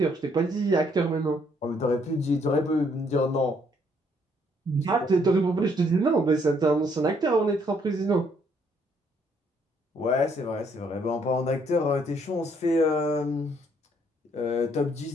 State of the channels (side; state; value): both; normal; correlation 0.68